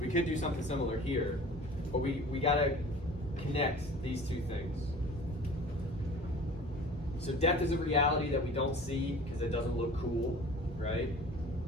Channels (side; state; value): both; normal; correlation 0.43